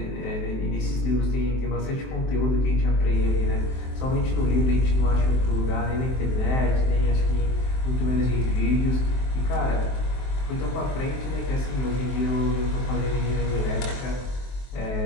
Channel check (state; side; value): late; right; 23 ms